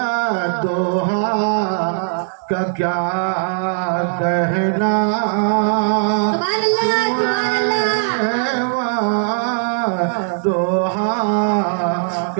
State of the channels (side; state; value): left; silent; 67 dB below the other